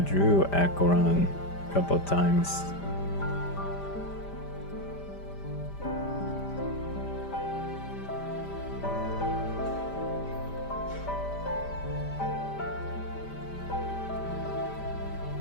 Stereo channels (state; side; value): late; right; 5.0 ms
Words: Acheron a couple times.